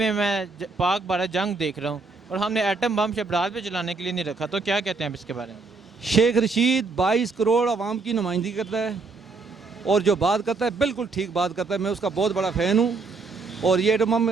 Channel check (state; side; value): quieter; left; 4.1 dB